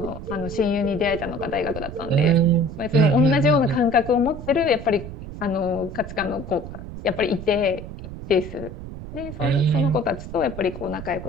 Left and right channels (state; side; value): noise; right; rumble, 11 dB below the sound